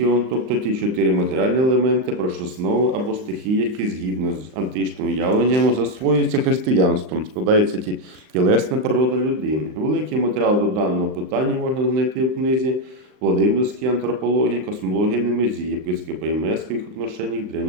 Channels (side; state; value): left; late; 39 ms